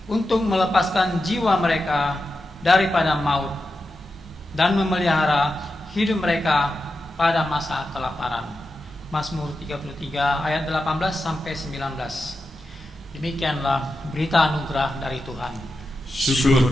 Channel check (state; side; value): normal; both; correlation 0.90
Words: untuk melepaskan jiwa mereka daripada maut dan memelihara hidup mereka pada masa kelaparan. Mazmur 33 ayat 18 sampai 19. Demikianlah berita anugerah dari Tuhan.